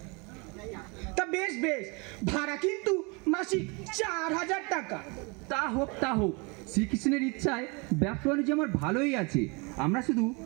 তা বেশ বেশ, ভাড়া কিন্তু মাসিক 4000 টাকা। তা হোক তা হোক, শ্রীকৃষ্ণের ইচ্ছায় ব্যবসা বাণিজ্য আমার ভালোই আছে। আমরা শুধু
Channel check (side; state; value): left; quieter; 29.9 dB